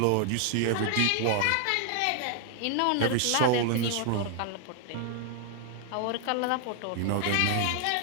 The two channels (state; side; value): different; both; correlation 0.00